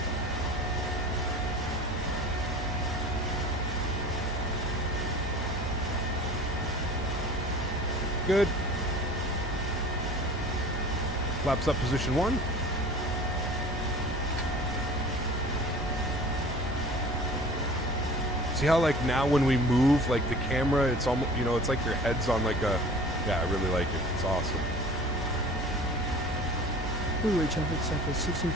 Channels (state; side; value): normal; both; correlation 0.43